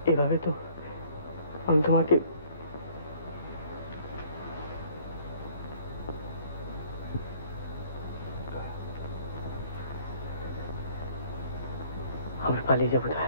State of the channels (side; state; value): both; inverted; correlation -0.58